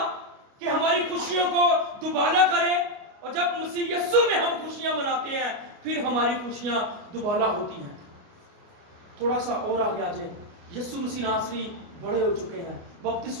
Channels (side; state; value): left; late; 29 ms